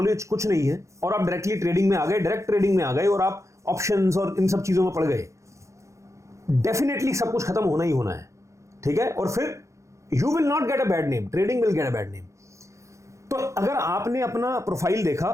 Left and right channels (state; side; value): late; left; 0.15 ms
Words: कुछ नहीं है और आप डायरेक्टली ट्रेडिंग में आ गए, डायरेक्ट ट्रेडिंग में आ गए और आप ऑप्शंस और इन सब चीजों में पड़ गए, डेफिनेटली सब कुछ खत्म होना ही होना है, ठीक है? और फिर you will not get a bad name, trading will get a bad name. तो अगर आपने अपना प्रोफाइल देखा,